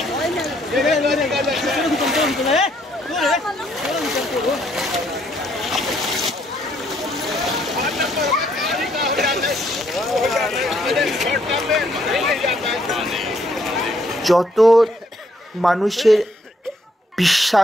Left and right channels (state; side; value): normal; both; correlation 0.70